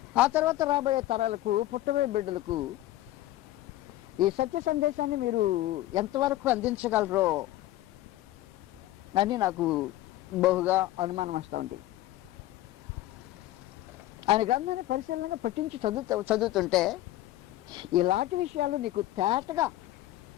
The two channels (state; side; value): quieter; right; 15.4 dB